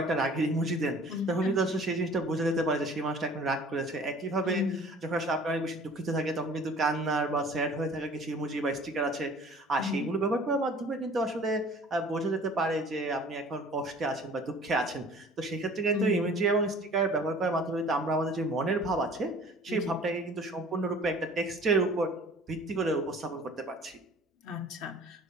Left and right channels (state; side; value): normal; both; correlation 0.48